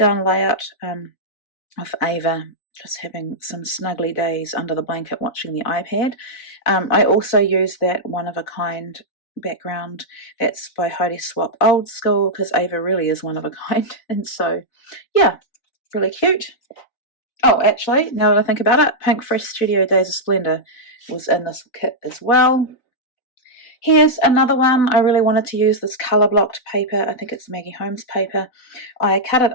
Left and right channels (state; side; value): late; right; 4.1 ms